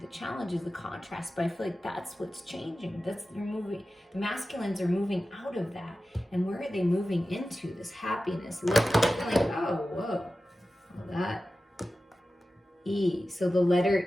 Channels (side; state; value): both; normal; correlation 0.94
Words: challenges, the contrast, but I feel like that's what's changing. You're moving. The masculines are moving out of that. And where are they moving into? This happiness. Like, oh, whoa. Well, that E. So the